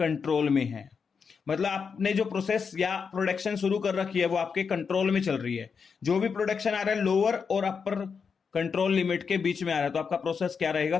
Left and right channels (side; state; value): right; quieter; 5.9 dB